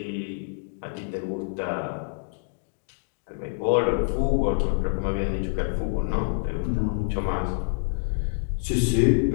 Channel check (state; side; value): silent; right; digital silence